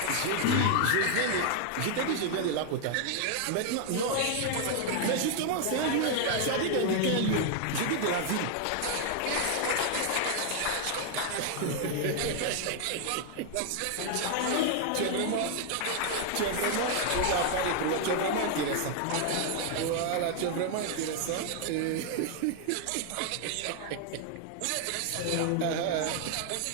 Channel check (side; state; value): both; different; correlation 0.00